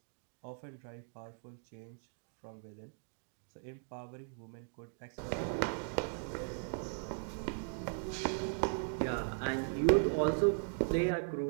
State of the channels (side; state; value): left; silent; digital silence